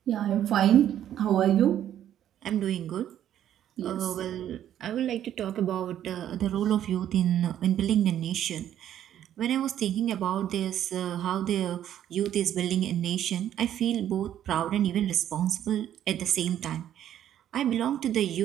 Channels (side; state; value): left; quieter; 11.0 dB